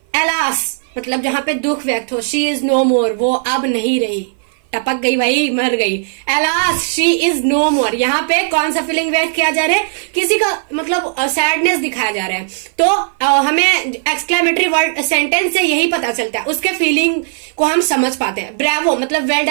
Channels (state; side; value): silent; left; 55 dB below the other